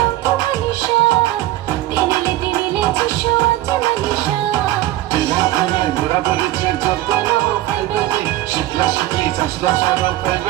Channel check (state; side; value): quieter; left; 15.5 dB